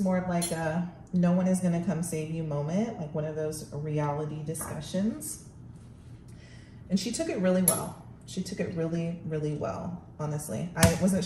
of like a no one is gonna come save you moment, like one of those reality discussions. And she took it really well. She took it really, really well, honestly. I wasn't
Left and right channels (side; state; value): both; identical; correlation 1.00